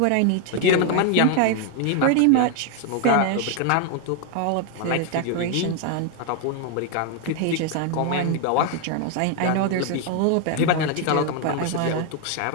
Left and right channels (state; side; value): different; both; correlation 0.01